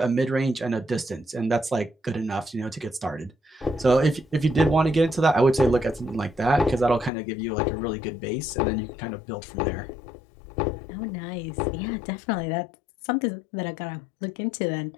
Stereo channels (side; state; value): right; drops out; at 7.1 s